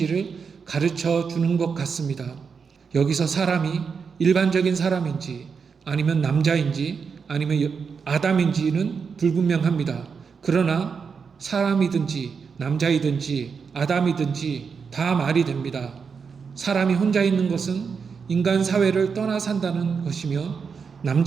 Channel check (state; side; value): quieter; left; 5.8 dB